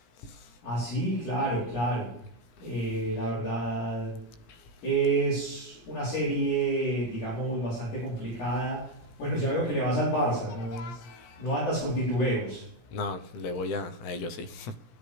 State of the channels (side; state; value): right; late; 17 ms